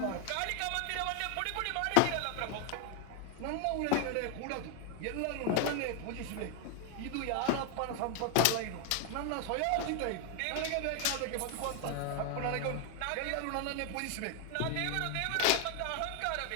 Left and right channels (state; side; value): different; both; correlation 0.00